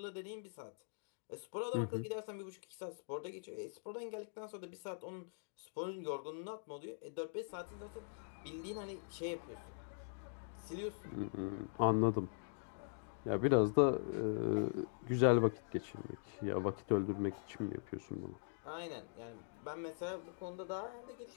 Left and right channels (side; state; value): right; silent; digital silence